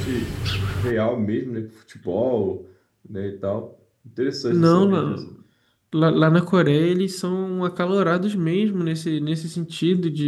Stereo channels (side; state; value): both; identical; correlation 1.00